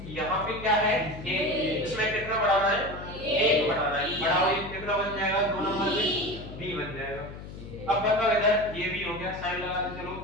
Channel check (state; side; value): noise; left; hum, 12 dB below the sound